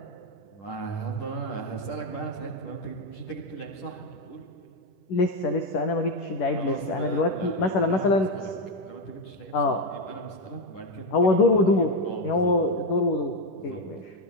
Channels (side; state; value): right; late; 10 ms